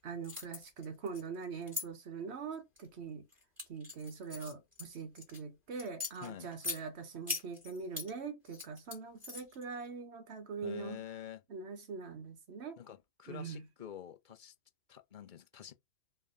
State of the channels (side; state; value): left; late; 2.5 ms